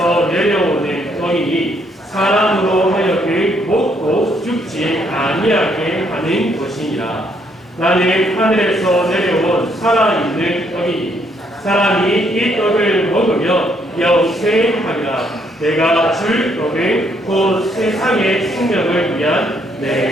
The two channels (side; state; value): both; normal; correlation 0.71